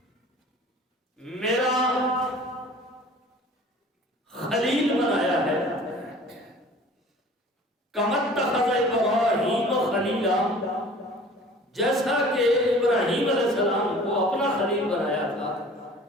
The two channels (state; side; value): normal; both; correlation 0.46